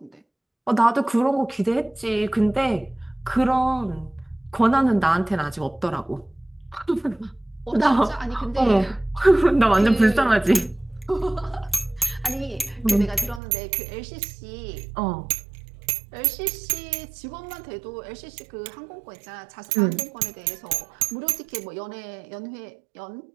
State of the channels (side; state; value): left; drops out; at 13.4 s